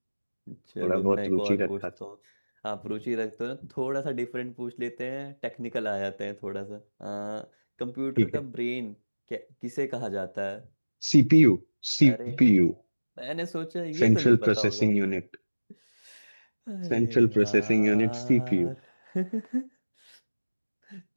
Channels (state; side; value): inverted; both; correlation -1.00